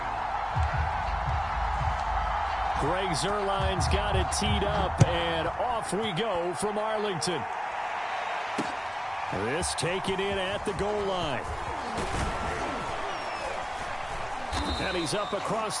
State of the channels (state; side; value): identical; both; correlation 1.00